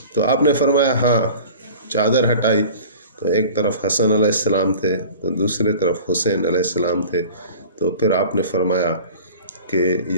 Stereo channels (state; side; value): inverted; both; correlation -0.41